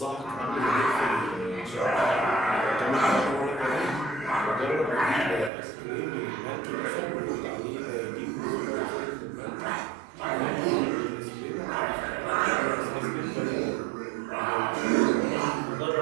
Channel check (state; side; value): drops out; left; at 5.5 s